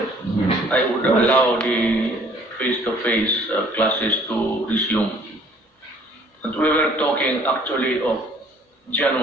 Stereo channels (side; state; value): both; normal; correlation 0.57